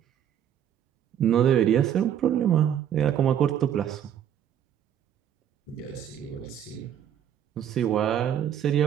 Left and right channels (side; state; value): left; quieter; 9.8 dB